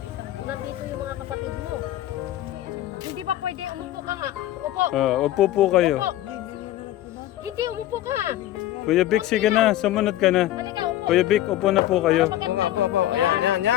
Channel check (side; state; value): right; quieter; 13.8 dB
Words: Nandito yung mga kapatid mo. Hindi ba pwede umupo ka nga? Upo. Upo po kayo. Upo. Hindi, umupo ka. Kuya Vic, sige na, sumunod ka na. Halika, upo. Kuya Vic, upo na po kayo. Oo nga po.